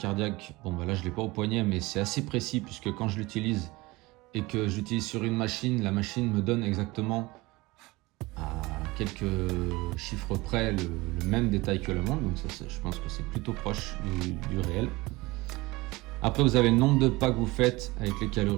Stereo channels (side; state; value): left; quieter; 21.7 dB